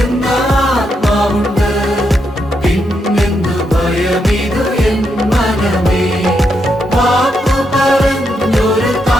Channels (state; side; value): normal; both; correlation 0.81